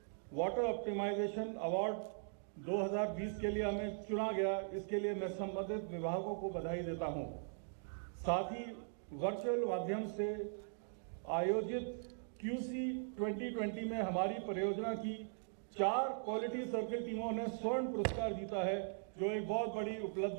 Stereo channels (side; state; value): left; silent; digital silence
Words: वाटर ऑप्टिमाइजेशन अवार्ड 2020 के लिए हमें चुना गया। इसके लिए मैं संबंधित विभागों को बधाई देता हूं। साथ ही वर्चुअल माध्यम से आयोजित QC 2020 में हमारी परियोजना की 4 क्वालिटी सर्किल टीमों ने स्वर्ण पुरस्कार जीता है, जो एक बहुत बड़ी